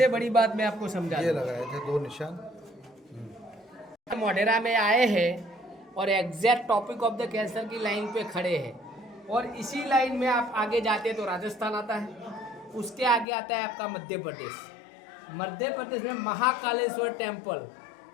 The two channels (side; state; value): right; drops out; at 13.2 s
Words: बड़ी बात मैं आपको समझा ये लगाए थे 2 निशान। मोढेरा में आए हैं और exact topic of the cancer की लाइन पे खड़े हैं, और इसी लाइन में आप आगे जाते हैं तो राजस्थान आता है, उसके आगे आता है आपका मध्य प्रदेश। मध्य प्रदेश में महाकालेश्वर टेम्पल